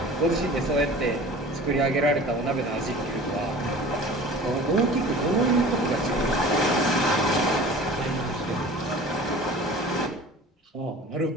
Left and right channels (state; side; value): normal; both; correlation 0.42